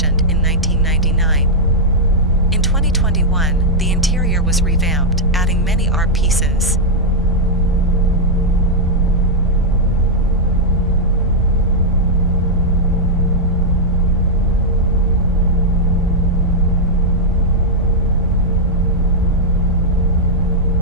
in 1999. In 2021, the interior was revamped, adding many art pieces.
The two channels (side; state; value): both; normal; correlation -0.04